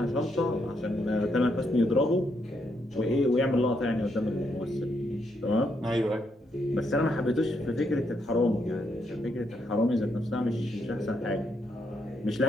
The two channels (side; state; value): both; normal; correlation 0.77